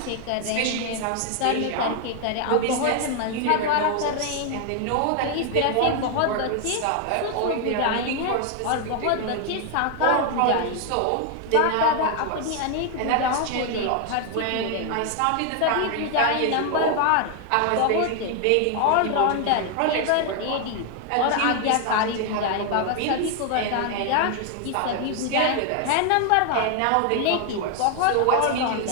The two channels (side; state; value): both; different; correlation 0.01